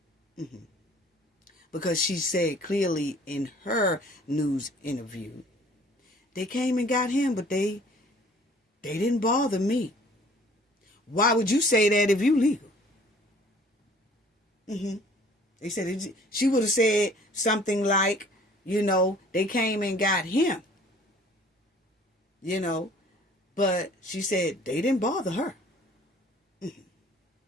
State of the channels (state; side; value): normal; both; correlation 0.53